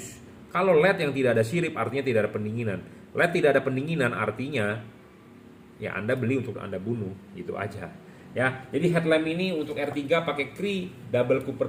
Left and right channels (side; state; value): both; identical; correlation 1.00